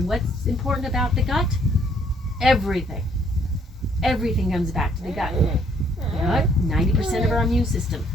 what's important about the gut? Everything. Everything comes back to the gut. You know what? 90% of our immune system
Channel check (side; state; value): both; normal; correlation 0.65